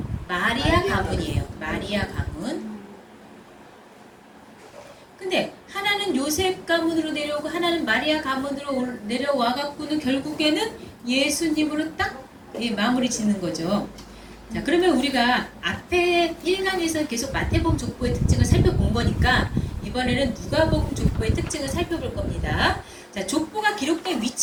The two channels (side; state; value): both; identical; correlation 1.00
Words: 마리아 가문이에요. 마리아 가문. 근데 하나는 요셉 가문으로 내려오고 하나는 마리아 가문으로 내려와 갖고는 결국에는 예수님으로 딱 마무리 짓는 거죠. 자, 그러면 우리가 앞에 1강에서 계속 마태복음 족보의 특징을 살펴본 거니까 이번에는 누가복음 족보의 특징을 살펴볼 겁니다. 자, 족보가 기록된